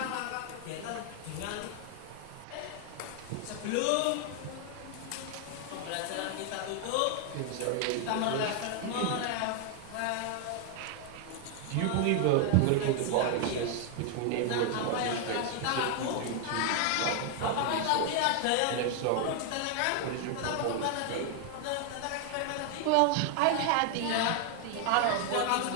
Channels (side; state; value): both; different; correlation 0.00